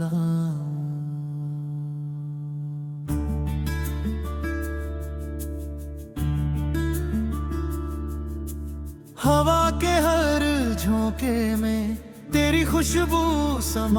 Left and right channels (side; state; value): both; identical; correlation 1.00